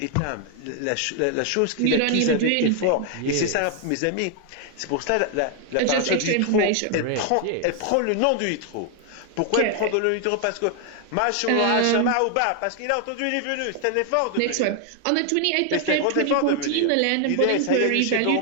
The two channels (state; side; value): different; both; correlation 0.00